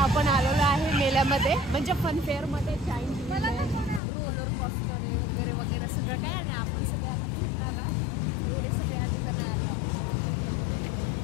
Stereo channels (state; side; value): drops out; right; at 4.0 s